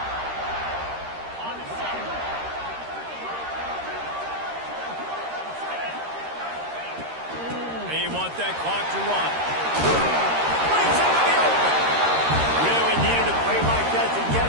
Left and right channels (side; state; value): left; late; 13 ms